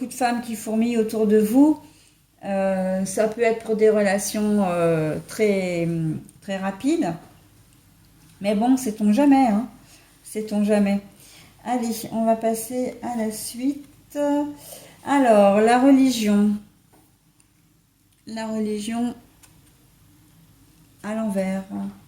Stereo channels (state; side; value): identical; both; correlation 1.00